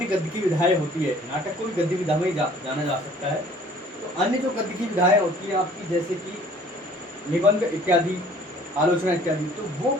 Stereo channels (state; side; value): normal; both; correlation 0.53